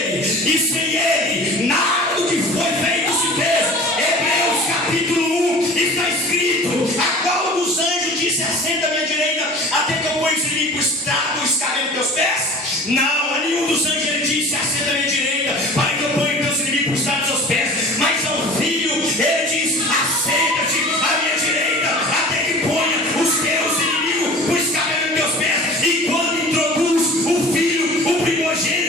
e sem Ele nada do que foi feito se fez. Hebreus capítulo 1 está escrito: a qual dos anjos disse: assenta à minha direita, até que eu ponha os inimigos tragam o escabelo dos teus pés? Não, a nenhum dos anjos ele disse: assenta à minha direita, para que eu ponha teus inimigos tragam os teus pés. Mas ao filho ele diz: assenta-te à minha direita, até que ponha os teus inimigos o escabelo dos teus pés. E quando introduz o filho, o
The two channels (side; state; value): both; normal; correlation 0.41